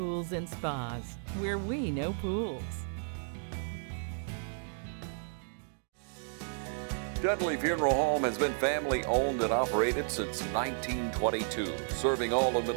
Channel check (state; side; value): silent; left; digital silence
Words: and Spas, where we know pools. Dudley Funeral Home has been family owned and operated since 1922, serving all of